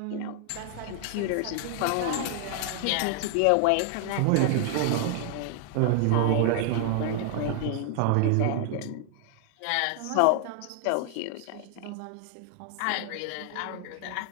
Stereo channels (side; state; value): both; different; correlation 0.00